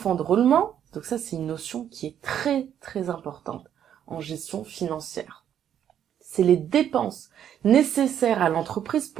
de roulement, donc ça c'est une notion qui est très très importante en gestion financière. C'est les dépenses nécessaires à l'entreprise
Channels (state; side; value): quieter; left; 9.7 dB